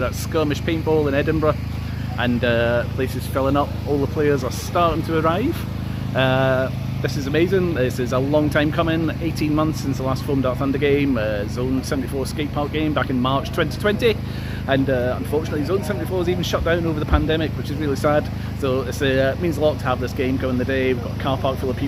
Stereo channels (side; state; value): both; identical; correlation 1.00